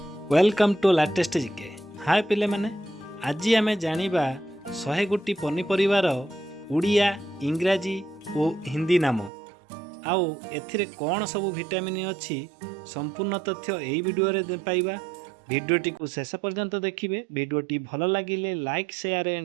Welcome to latest GK. हाय पिले माने, आज आम जानिबा 100 गोटी पनीपरिवार उड़िया इंग्राजी और हिंदी नाम आउ एथिरे कौन सब विटामिन अच्छी संपूर्ण तथ्य यही वीडियो रे पाइबा। वीडियोटी को शेष पर्यंत देखिए। वीडियोटी भल लगिले लाइक शेयर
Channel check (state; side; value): drops out; left; at 9.3 s